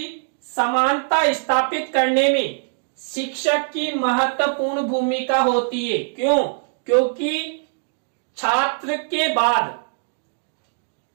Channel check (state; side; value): silent; left; digital silence